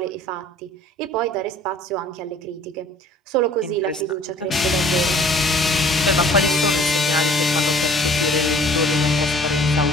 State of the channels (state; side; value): normal; both; correlation 0.52